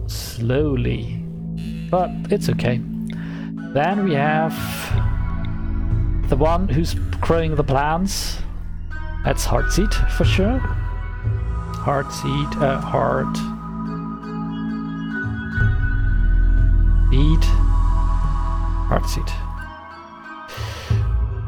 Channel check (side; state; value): both; identical; correlation 1.00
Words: slowly, but it's okay. Then we have the one who's growing the plants. That's Heartseed for sure. Heartseed, heart. Seed. Heartseed.